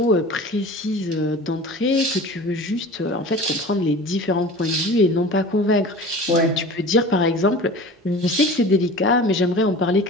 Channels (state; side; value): normal; both; correlation 0.38